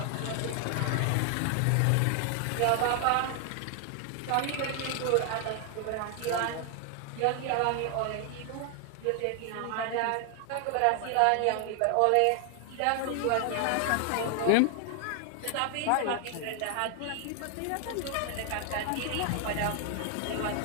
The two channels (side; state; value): both; different; correlation 0.00